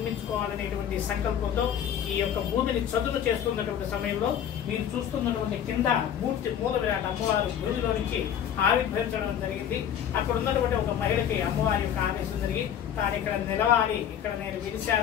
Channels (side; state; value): right; quieter; 9.4 dB